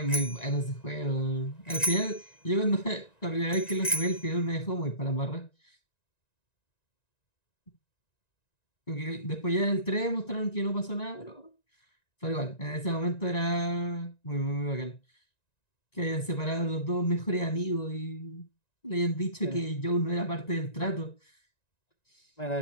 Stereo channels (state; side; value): late; right; 1.9 ms